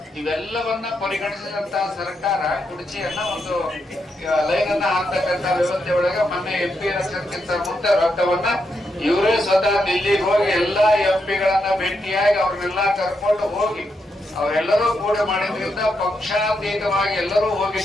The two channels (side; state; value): both; normal; correlation 0.82